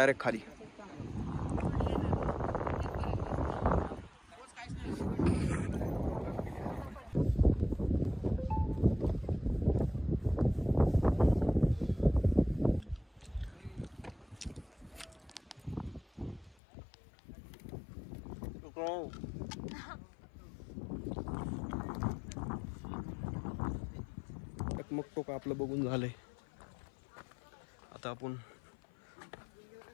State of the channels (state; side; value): drops out; right; at 16.6 s